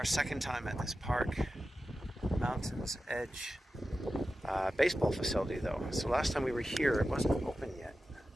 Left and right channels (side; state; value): both; normal; correlation 0.93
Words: second time at this park, Mountains Edge baseball facility, though. So last time we were here, it wasn't open yet.